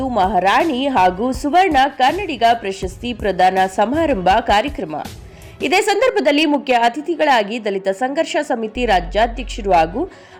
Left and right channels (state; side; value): identical; both; correlation 1.00